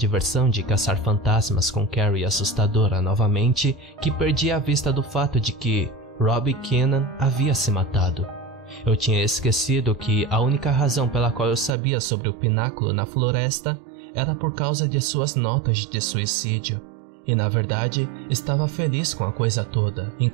de caçar fantasmas com Carrie assustadora novamente que perdi a vista do fato de que Robbie Keenan havia se matado. Eu tinha esquecido que a única razão pela qual eu sabia sobre o pináculo na floresta era por causa de suas notas de suicídio. E na verdade, estava feliz com a coisa toda,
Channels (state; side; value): drops out; left; at 11.8 s